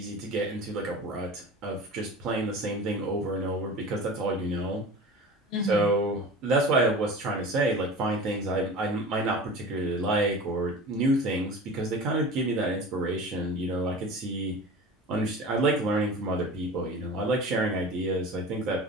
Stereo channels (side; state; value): both; normal; correlation 0.36